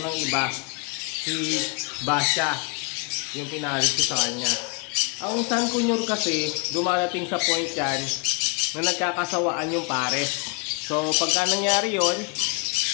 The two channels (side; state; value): right; quieter; 32.6 dB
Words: iba. Si Basha, yung pinaris ko sa kanya. Ang San Cunyor kasi, dumarating sa point yan na nagkakasawaan yung pares. So, pagka nangyari yon,